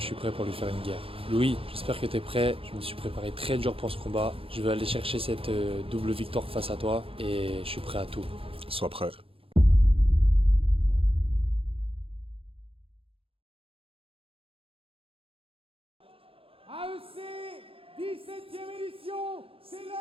suis prêt pour lui faire une guerre. Louis, j'espère que tu es prêt. Je me suis préparé très dur pour ce combat. Je vais aller chercher cette double victoire face à toi. Et je suis prêt à tout. Sois prêt. AEC, 17e édition, c'est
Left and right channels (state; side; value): late; left; 0.27 ms